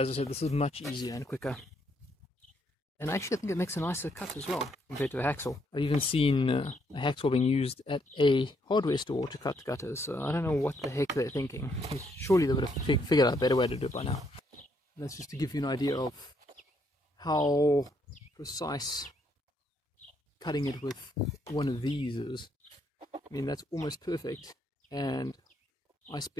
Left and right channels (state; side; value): normal; both; correlation 0.73